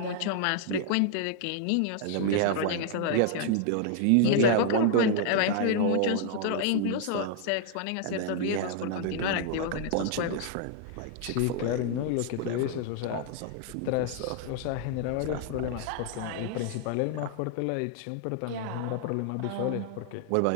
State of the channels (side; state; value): both; different; correlation 0.00